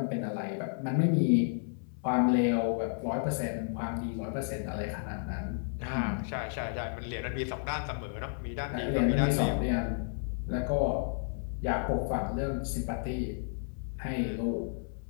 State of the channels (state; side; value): silent; right; 56 dB below the other